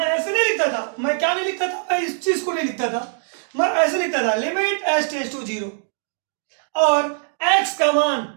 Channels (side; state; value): left; silent; digital silence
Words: ऐसे नहीं लिखता था, मैं क्या नहीं लिखता था, मैं इस चीज को नहीं लिखता था, मैं ऐसे लिखता था, लिमिट h टेंड्स टू 0, और x का